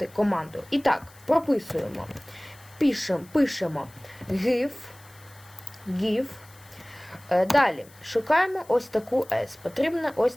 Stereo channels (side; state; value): left; noise; hiss, 25 dB below the sound